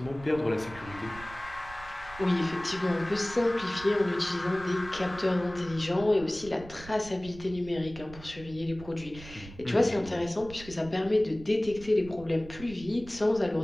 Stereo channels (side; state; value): right; noise; rumble, 16 dB below the sound